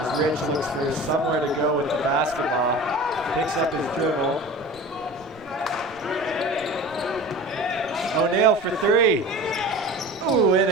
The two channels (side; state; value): both; normal; correlation 0.37